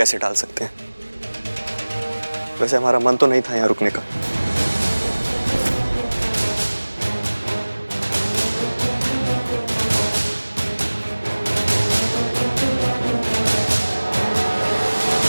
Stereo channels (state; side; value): inverted; both; correlation -1.00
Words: टाल सकते हैं? वैसे हमारा मन तो नहीं था यहाँ रुकने का।